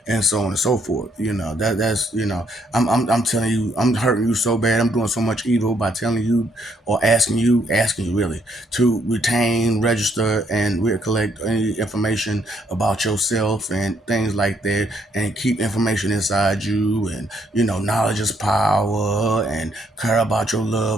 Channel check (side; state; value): both; normal; correlation 0.71